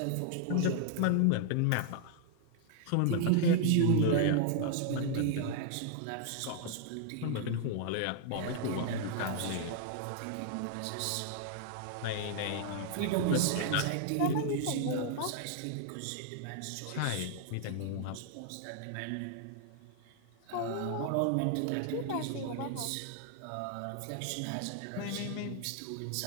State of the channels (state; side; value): different; both; correlation 0.00